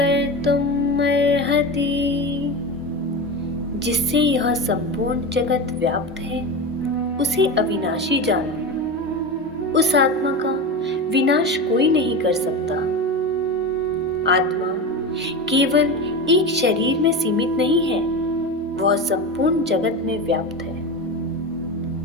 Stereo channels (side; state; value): both; normal; correlation 0.23